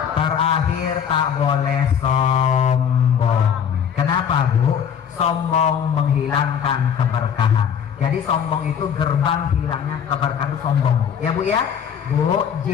Terakhir tak boleh sombong. Kenapa Bu? Sombong menghilangkan keberkahan. Jadi sombong itu gerbang hilangnya keberkahan itu sombong Bu. Ya Bu ya. Bu,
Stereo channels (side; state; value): right; quieter; 8.0 dB